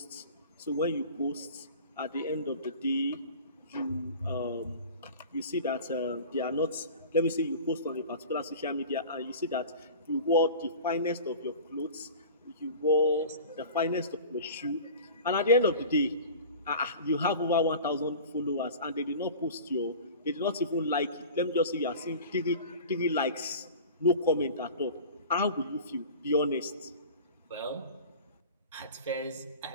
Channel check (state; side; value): inverted; both; correlation -0.38